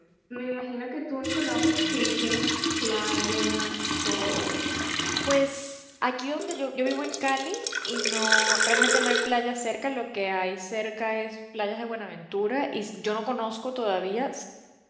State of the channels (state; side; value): identical; both; correlation 1.00